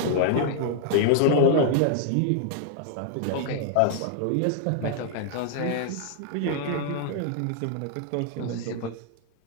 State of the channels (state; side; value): different; both; correlation -0.01